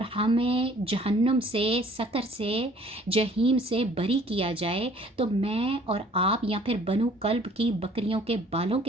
ہمیں جہنم سے، سقر سے، جہیم سے بری کیا جائے، تو میں اور آپ یا پھر بنو کلب کی بکریوں کے بالوں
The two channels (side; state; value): both; normal; correlation 0.56